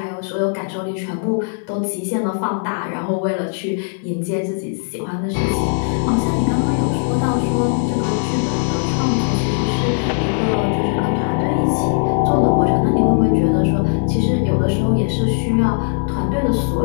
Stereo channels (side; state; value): right; silent; digital silence